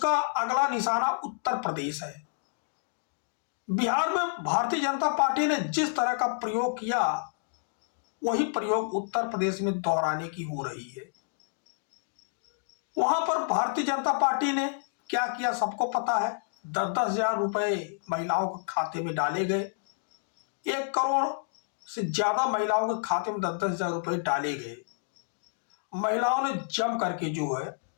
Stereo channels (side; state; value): right; silent; digital silence